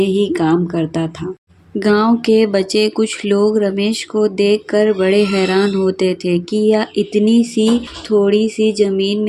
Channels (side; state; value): both; identical; correlation 1.00